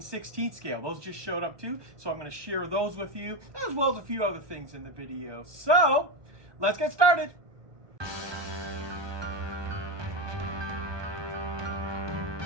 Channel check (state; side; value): late; left; 1.2 ms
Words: 16th scale. Those just showed up too, so I'm going to share those with you, as well as a few other things in the video. So, let's get started.